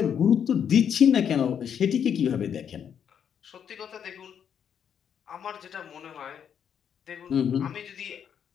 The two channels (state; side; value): quieter; right; 8.2 dB